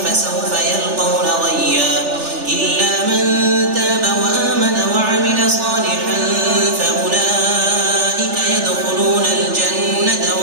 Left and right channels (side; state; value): left; late; 3.4 ms